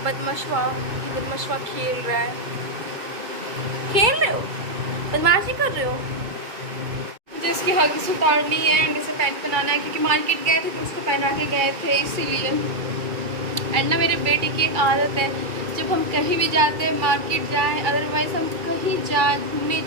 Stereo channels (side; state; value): left; late; 2.3 ms